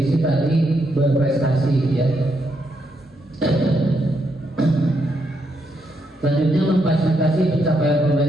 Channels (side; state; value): both; normal; correlation 0.79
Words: tadi berprestasi, ya. Selanjutnya memfasilitasi pencapaian